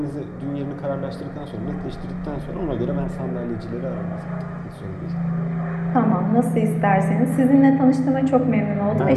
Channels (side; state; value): both; identical; correlation 1.00